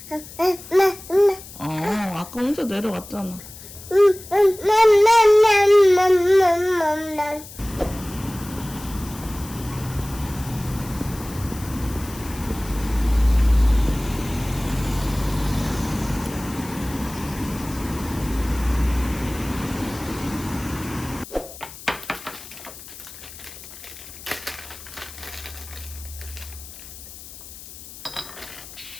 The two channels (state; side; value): noise; left; hiss, 15 dB below the sound